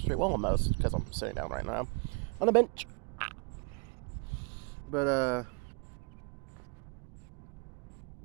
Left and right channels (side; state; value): left; quieter; 34.7 dB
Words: straight. Well, almost, because I'm sitting down right now on a bench. But,